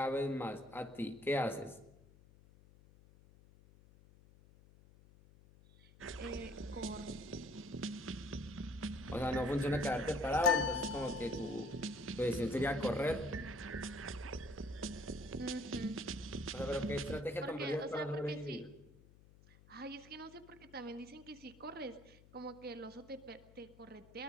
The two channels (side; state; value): left; noise; hum, 23 dB below the sound